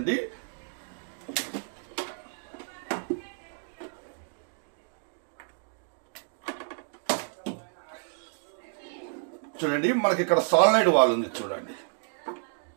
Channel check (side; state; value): left; silent; 58 dB below the other